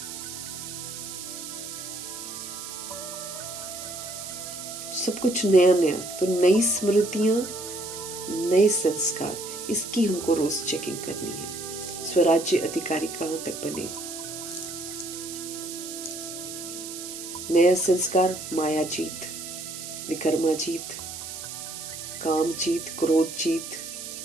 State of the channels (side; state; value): right; noise; hiss, 9 dB below the sound